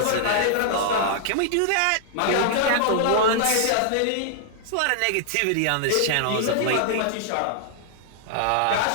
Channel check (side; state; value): both; different; correlation -0.01